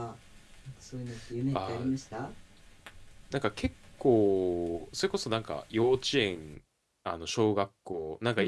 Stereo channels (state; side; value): identical; both; correlation 1.00